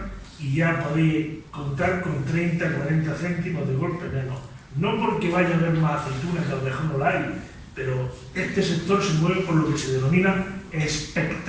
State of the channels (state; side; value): identical; both; correlation 1.00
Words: y ya podéis contar con 30-40 céntimos de golpe menos. No porque vaya a haber más aceitunas, que a lo mejor no la hay, pero este sector se mueve por lo que se denomina